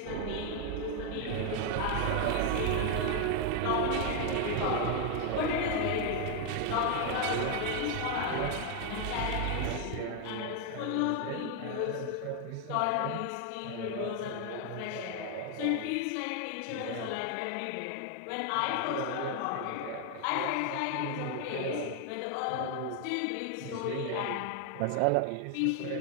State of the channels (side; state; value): both; different; correlation 0.01